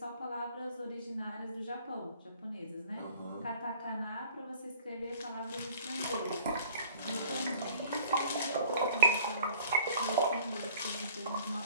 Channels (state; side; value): inverted; both; correlation -0.52